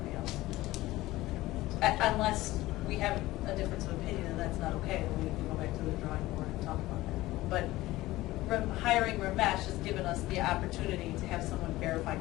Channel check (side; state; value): right; quieter; 17.6 dB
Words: else. Unless we have a difference of opinion, and that's not okay, then we can go back to the drawing board and talk about that. But hiring Ramesh has given us the opportunity to have someone verify